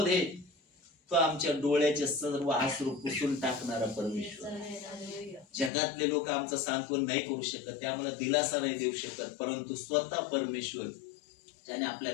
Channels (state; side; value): drops out; right; at 5.7 s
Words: तो आमच्या डोळ्याचे सर्व अश्रू पुसून टाकणारा परमेश्वर. जगातले लोक आमचं सांत्वन नाही करू शकत, ते आम्हाला दिलासा नाही देऊ शकत, परंतु स्वतः परमेश्वर ज्याने आपल्या